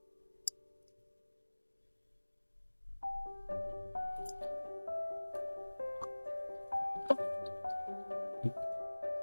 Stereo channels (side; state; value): both; inverted; correlation -1.00